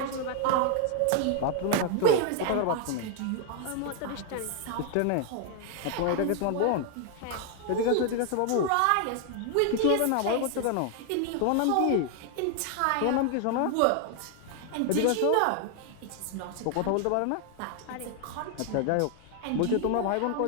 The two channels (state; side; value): different; both; correlation 0.00